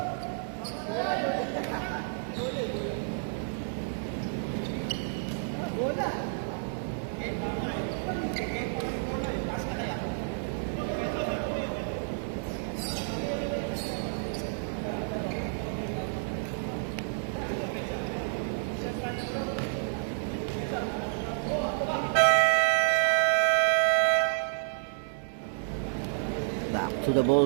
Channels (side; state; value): left; silent; 58 dB below the other